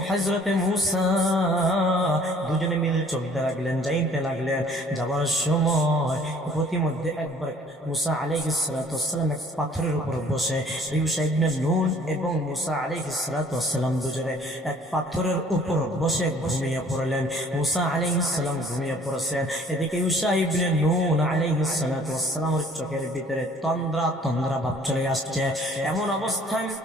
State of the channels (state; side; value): normal; both; correlation 0.55